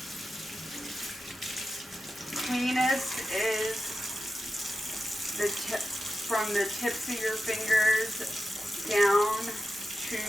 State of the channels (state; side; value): normal; both; correlation 0.91